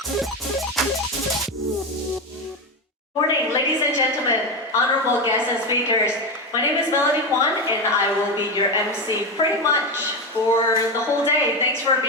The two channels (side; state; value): both; normal; correlation 0.15